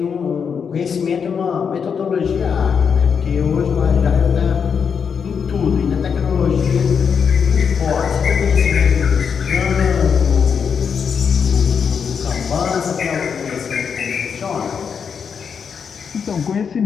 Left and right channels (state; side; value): quieter; right; 6.6 dB